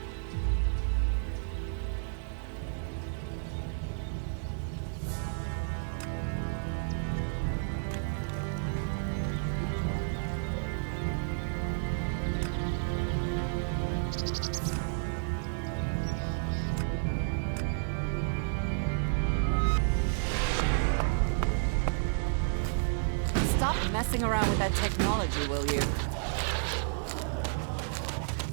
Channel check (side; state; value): left; silent; 57 dB below the other